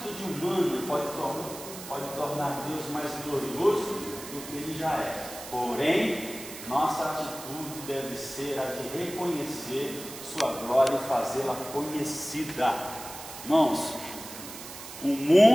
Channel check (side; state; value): right; noise; hiss, 12 dB below the sound